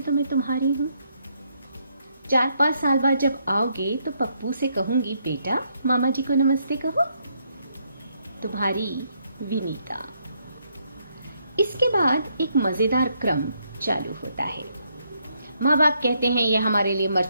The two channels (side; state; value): both; inverted; correlation -0.74